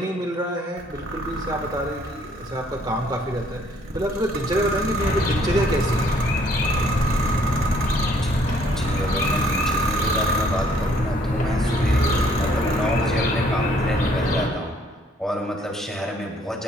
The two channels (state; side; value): normal; both; correlation 0.63